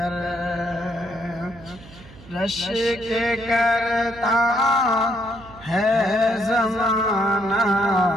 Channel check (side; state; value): right; noise; hum, 20 dB below the sound